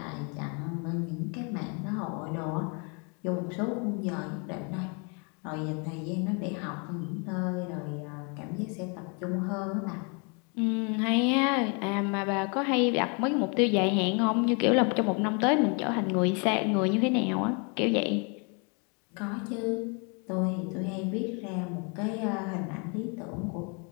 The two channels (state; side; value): quieter; right; 35.1 dB